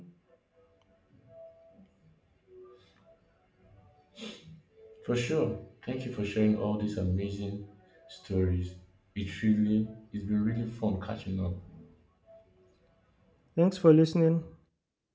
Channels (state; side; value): identical; both; correlation 1.00